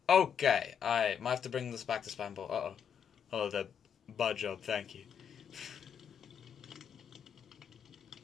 Okay, I might have to bring this back to spam ball. Uh-oh. Hello there, Bud Job, thank you.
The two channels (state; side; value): quieter; right; 7.8 dB